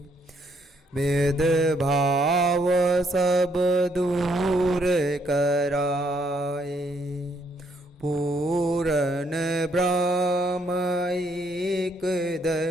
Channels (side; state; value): both; normal; correlation 0.70